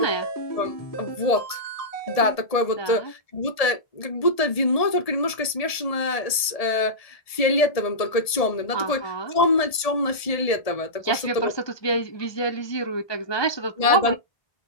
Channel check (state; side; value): late; right; 1.7 ms